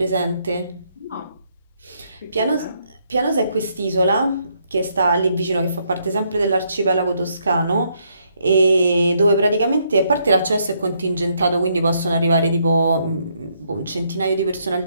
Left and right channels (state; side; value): inverted; both; correlation -0.73